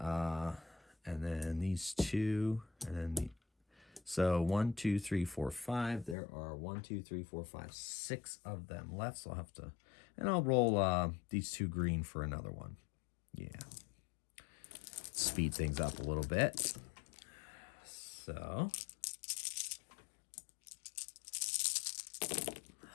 then these 2. And then so 1, 2, 3, 4, 5. There are 1, 2, 3, 4, 5, 6 of them left. So I'll have to... And I'll roll these 2 green for another one. Yeah. Speed things up a little bit. So...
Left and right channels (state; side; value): drops out; right; at 6.2 s